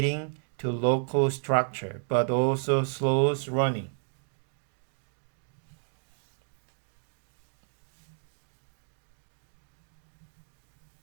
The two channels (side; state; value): left; silent; 57 dB below the other